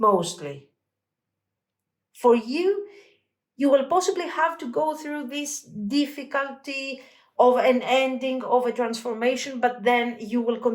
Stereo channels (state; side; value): identical; both; correlation 1.00